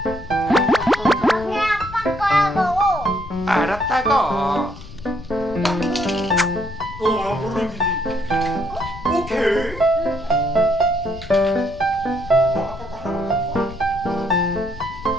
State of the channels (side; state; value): left; noise; rumble, 15 dB below the sound